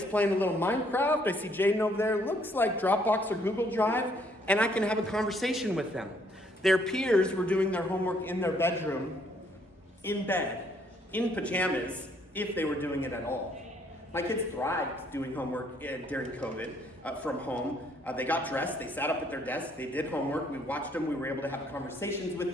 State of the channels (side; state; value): both; normal; correlation 0.66